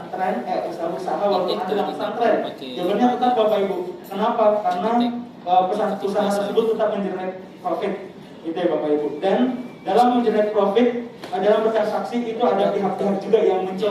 usaha-usaha walaupun ada dalam pesantren? Jawabannya tetap Bapak Ibu. Kenapa? Karena usaha tersebut tetap mengenerate profit, gitu ya Bapak Ibu. Dan dalam mengenerate profit, dalam bertransaksi itu ada pihak-pihak juga yang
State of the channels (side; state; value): both; identical; correlation 1.00